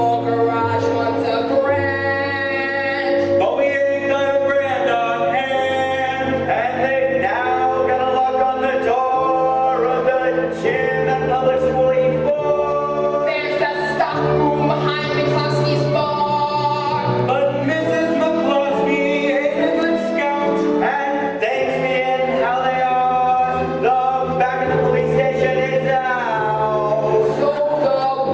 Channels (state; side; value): identical; both; correlation 1.00